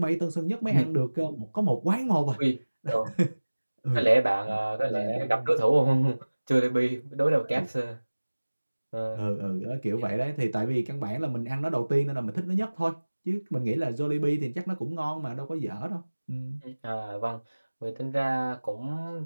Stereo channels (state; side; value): inverted; both; correlation -1.00